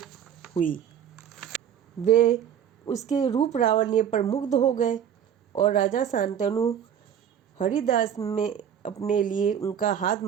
वे उसके रूप लावण्य पर मुग्ध हो गए और राजा शांतनु हरिदास में अपने लिए उनका हाथ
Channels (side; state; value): left; quieter; 9.0 dB